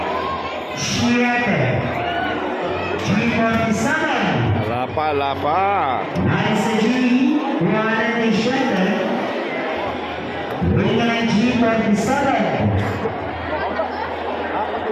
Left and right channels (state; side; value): identical; both; correlation 1.00